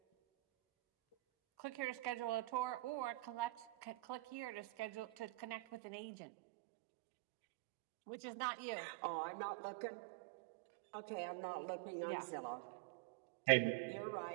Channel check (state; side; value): drops out; left; at 5.8 s